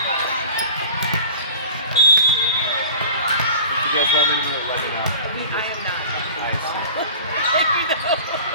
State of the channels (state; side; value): inverted; both; correlation -0.39